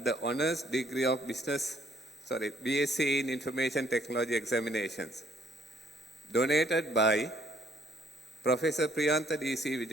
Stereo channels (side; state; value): both; normal; correlation 0.65